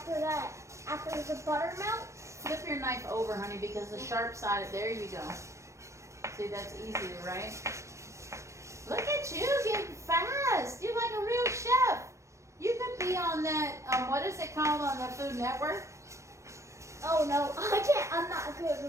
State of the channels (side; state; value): left; late; 0.14 ms